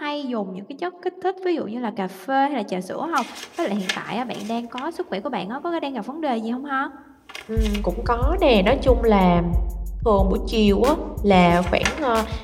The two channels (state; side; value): identical; both; correlation 1.00